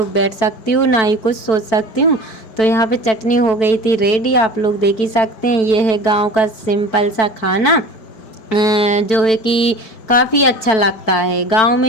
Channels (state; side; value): late; right; 4.5 ms